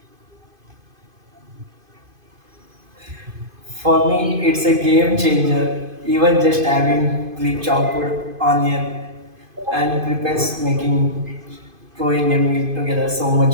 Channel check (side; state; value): left; late; 2.5 ms